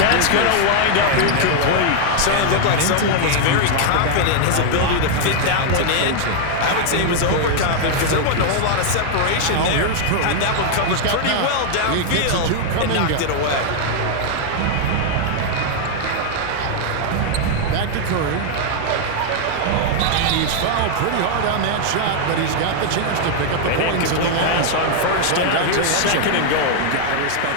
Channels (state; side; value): different; both; correlation 0.00